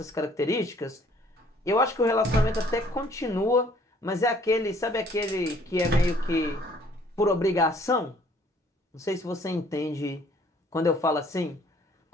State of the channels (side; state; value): both; normal; correlation 0.59